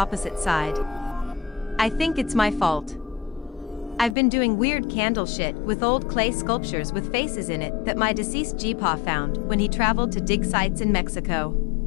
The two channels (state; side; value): drops out; right; at 4.2 s